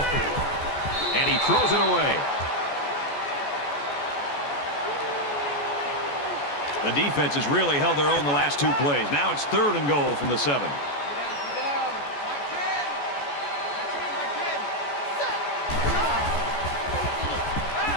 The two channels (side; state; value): right; late; 14 ms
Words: carrier. And he throws it away. The defense has really held their own the last 2 plays. Now it's 3rd and goal from the 7.